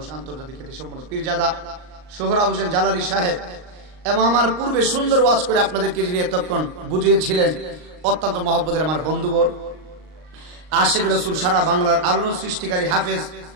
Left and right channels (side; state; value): left; late; 39 ms